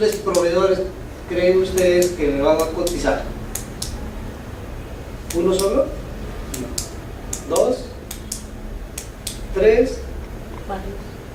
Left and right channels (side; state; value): both; identical; correlation 1.00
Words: proveedores creen ustedes que le van a cotizar? ¿Uno solo? No. ¿Dos? ¿Tres?